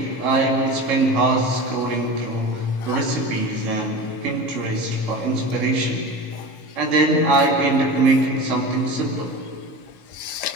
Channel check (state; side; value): late; right; 4.6 ms